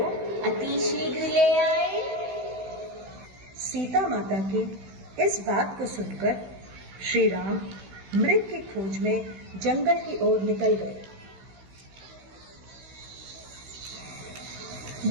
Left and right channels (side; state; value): left; late; 16 ms